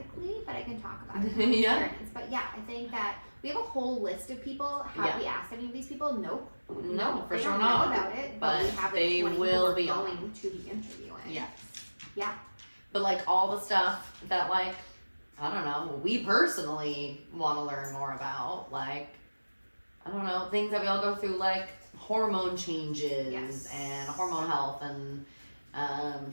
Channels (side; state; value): both; inverted; correlation -1.00